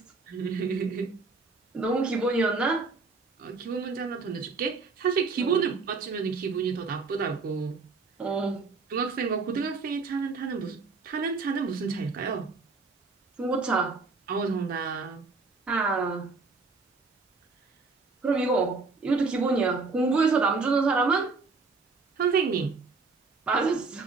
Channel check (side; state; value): left; quieter; 4.1 dB